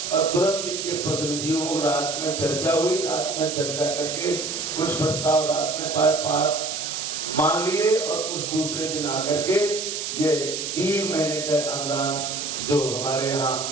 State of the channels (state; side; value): noise; right; hiss, 4 dB below the sound